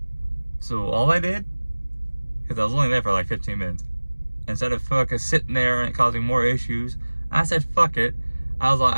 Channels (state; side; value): inverted; both; correlation -1.00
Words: So all I did, because I was only there for like 15 minutes, instead of fucking sitting there and causing more issues, I said fuck it. I